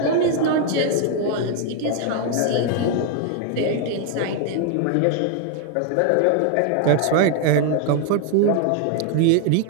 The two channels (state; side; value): different; both; correlation 0.00